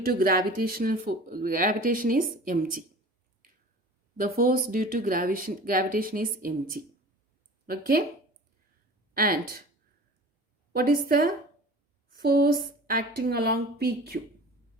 to gravitation is mg. the force due to gravitation is mg. Okay, and what is the force acting along PQ?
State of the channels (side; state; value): both; normal; correlation 0.40